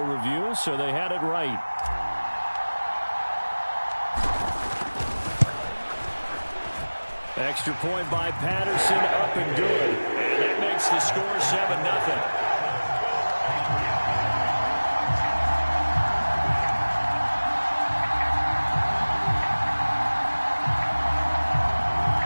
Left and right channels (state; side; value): inverted; both; correlation -1.00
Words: review, so they had it right. Extra point by Patterson, up and good. And that makes the score 7-0.